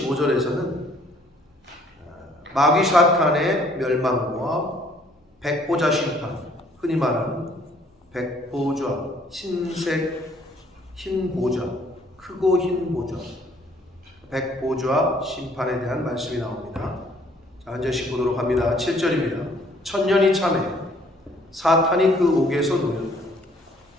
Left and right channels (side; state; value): both; normal; correlation 0.61